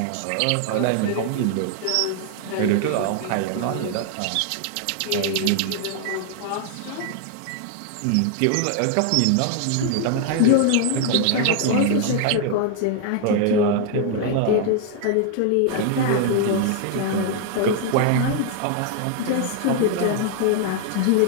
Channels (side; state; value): both; different; correlation 0.00